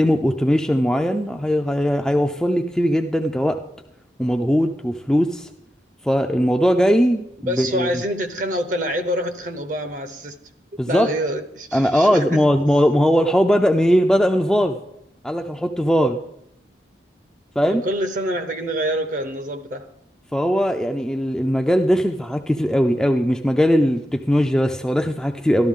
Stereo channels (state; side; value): normal; both; correlation 0.88